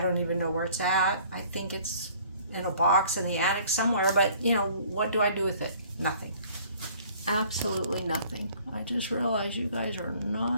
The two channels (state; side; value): inverted; both; correlation -0.55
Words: even know where it's at. I think it's in a box in the attic somewhere, but, you know, what do I do with it? Nothing. Absolutely nothing. I just realized you guys are